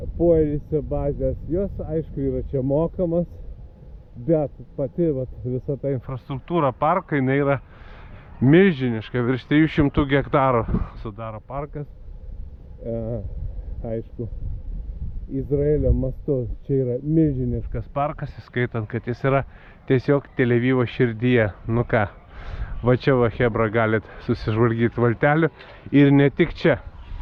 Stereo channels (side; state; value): both; identical; correlation 1.00